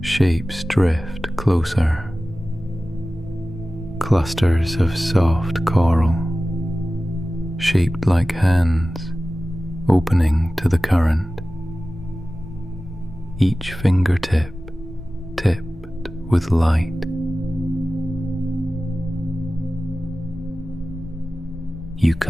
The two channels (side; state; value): both; normal; correlation 0.96